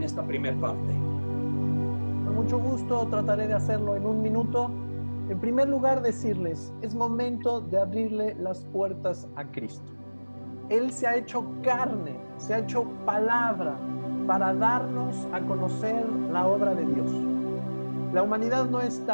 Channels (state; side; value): inverted; both; correlation -1.00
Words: esta primera parte. Con mucho gusto trataré de hacerlo en un minuto. En primer lugar, decirles, es momento de abrirle las puertas a Cristo. Él se ha hecho carne, se ha hecho palabra para darnos a conocer la obra de Dios. La humanidad no